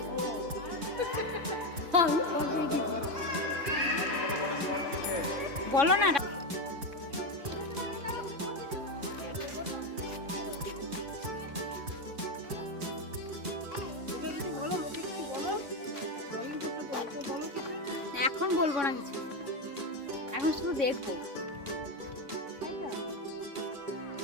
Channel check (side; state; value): left; late; 3.6 ms